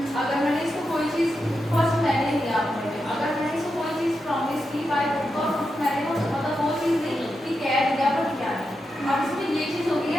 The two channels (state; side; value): normal; both; correlation 0.87